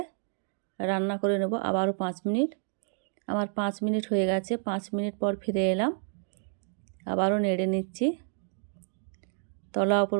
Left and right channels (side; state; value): left; silent; 58 dB below the other